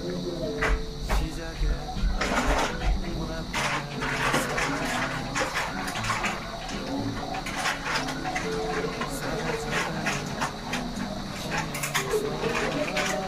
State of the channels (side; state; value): both; identical; correlation 1.00